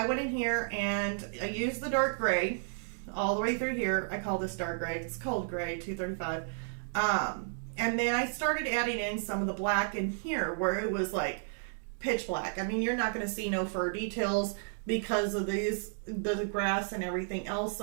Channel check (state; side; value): silent; left; digital silence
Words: went in here and I used the dark gray all the way through here. I call this dark gray. It's cold gray, 235. And then I started adding in some of the black in here where it was like pitch black. I mean, you're not going to see no fur details because of the grass and everything else.